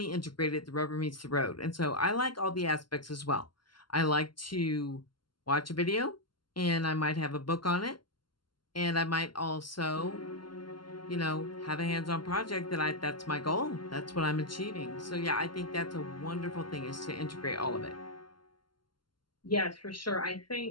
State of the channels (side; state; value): right; late; 0.72 ms